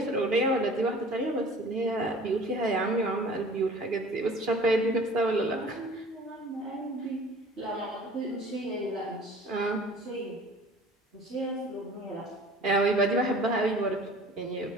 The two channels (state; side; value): normal; both; correlation 0.47